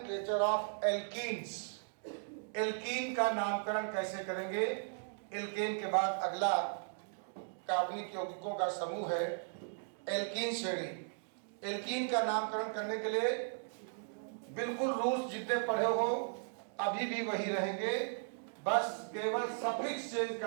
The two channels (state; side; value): silent; left; digital silence